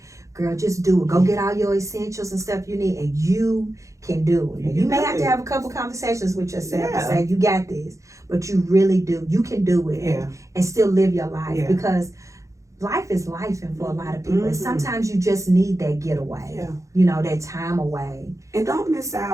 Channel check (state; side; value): late; left; 0.15 ms